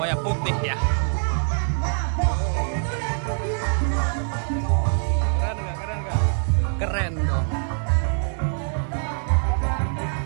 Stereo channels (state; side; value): silent; left; digital silence